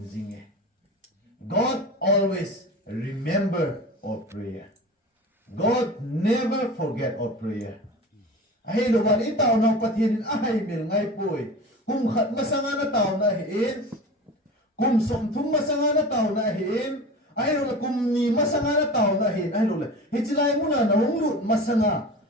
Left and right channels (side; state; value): both; normal; correlation 0.34